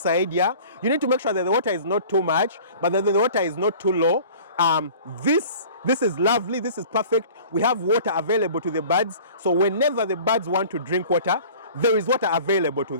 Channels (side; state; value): both; inverted; correlation -0.45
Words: yeah? You need to make sure that the water is not too much, but that the water is not too low. This is lovely, this is perfect. We have water available to the birds, so whenever the birds want to drink water, there is water available to